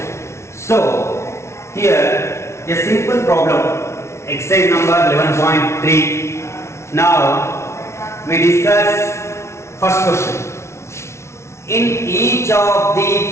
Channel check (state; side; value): late; right; 0.13 ms